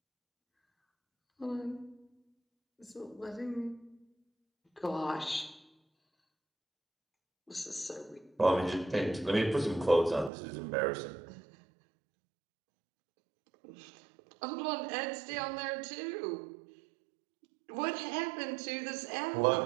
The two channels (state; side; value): drops out; left; at 10.3 s